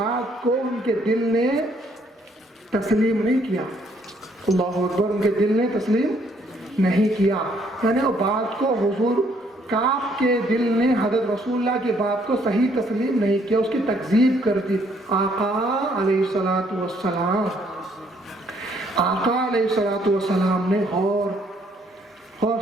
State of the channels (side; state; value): both; normal; correlation 0.67